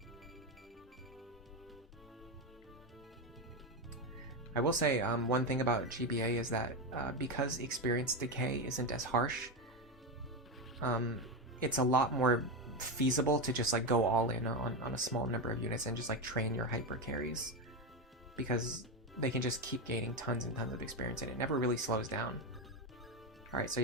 I will say one thing about GBA is that because experience decay isn't as harsh, it's a lot more feasible to just like go all in on a small number of units and just like train your hyper carries, because they can just keep gaining tons and tons of experience and it never really slows down. Alright, so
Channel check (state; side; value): normal; both; correlation 0.12